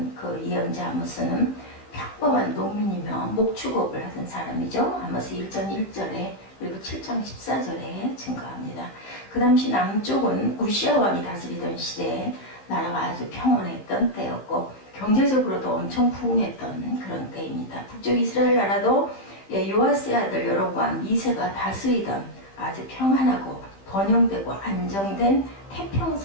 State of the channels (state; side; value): late; right; 15 ms